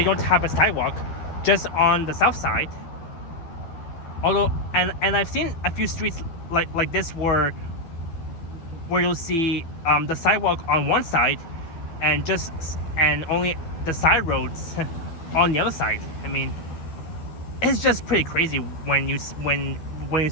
don't have a sidewalk, just on the south side. Although, and I've seen a few streets like this where you'll see the sidewalk on one side, and only the side roads on the other side. I mean, it's just pretty crazy when you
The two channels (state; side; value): late; right; 12 ms